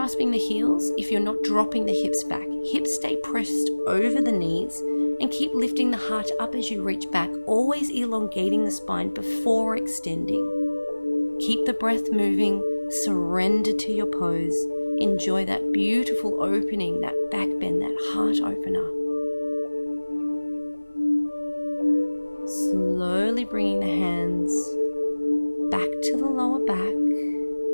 the heels if you're not dropping the hips back. Hips stay pressed over the knees and keep lifting the heart up as you reach back, always elongating the spine before extending. Keep the breath moving, surrender to your pose. Enjoy that beautiful opening, that back bend, that heart opener. Slowly bringing the hands back to the lower back.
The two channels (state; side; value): inverted; both; correlation -1.00